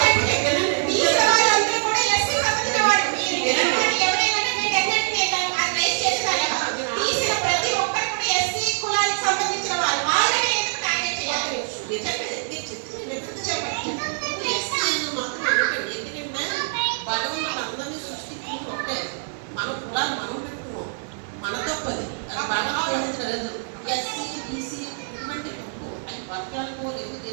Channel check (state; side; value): silent; left; 57 dB below the other